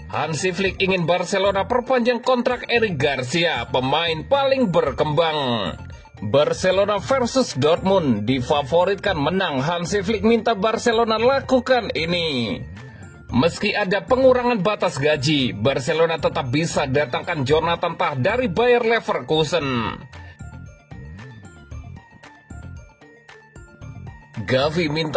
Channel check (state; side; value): identical; both; correlation 1.00